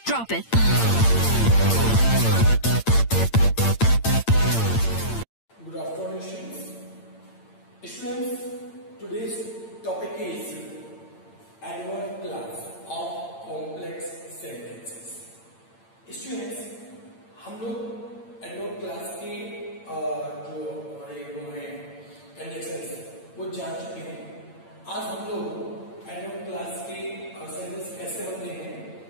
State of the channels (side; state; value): right; late; 8.8 ms